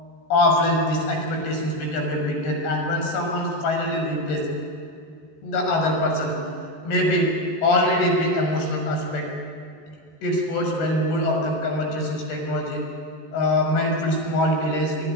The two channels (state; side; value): late; right; 14 ms